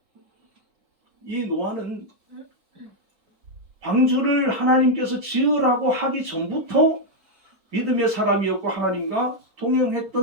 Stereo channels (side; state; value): left; late; 4.9 ms